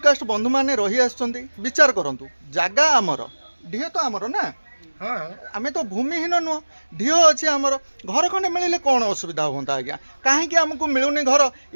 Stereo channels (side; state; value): both; inverted; correlation -1.00